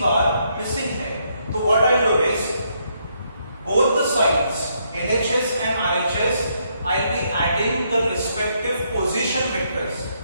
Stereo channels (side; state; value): both; inverted; correlation -0.74